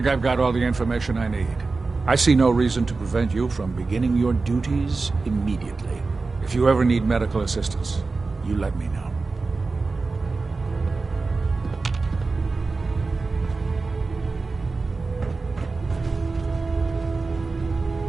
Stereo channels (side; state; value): left; quieter; 3.9 dB